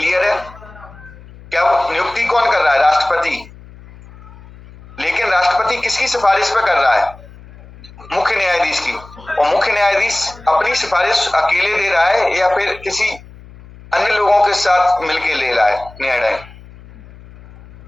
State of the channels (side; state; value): left; noise; hum, 20 dB below the sound